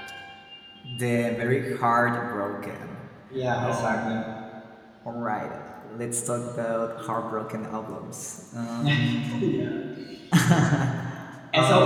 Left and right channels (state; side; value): identical; both; correlation 1.00